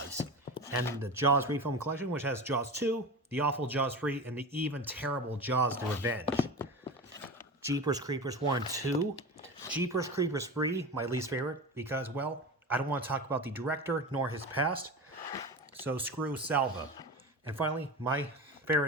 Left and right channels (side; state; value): both; normal; correlation 0.27